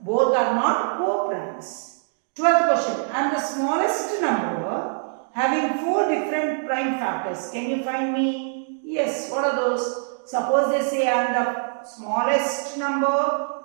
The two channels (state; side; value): silent; left; digital silence